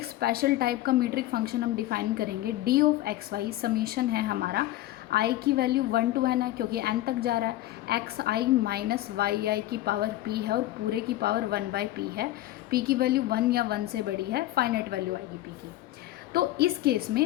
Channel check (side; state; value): right; quieter; 15.4 dB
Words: स्पेशल टाइप का मीट्रिक फंक्शन हम डिफाइन करेंगे d of x Y. Summation है हमारा i की वैल्यू 1 to n है क्योंकि n तक जा रहा है, एक्स आई माइनस वाई आई की पावर p है और पूरे की पावर 1/p है। p की वैल्यू 1 या 1 से बड़ी है, फाइनाइट वैल्यू आएगी p की। तो इस केस